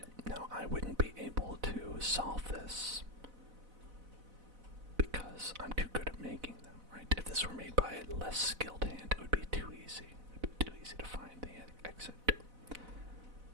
now I wouldn't be able to solve this because I'm too good at making them, right? If this were made by a less skilled hand, it would be too easy. It would be too easy to find the exit.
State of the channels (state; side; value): late; left; 4.0 ms